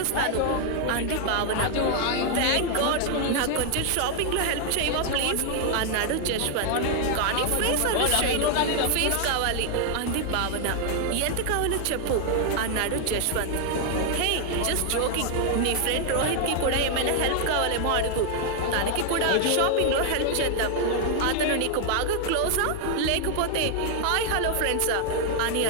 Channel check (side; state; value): both; different; correlation 0.00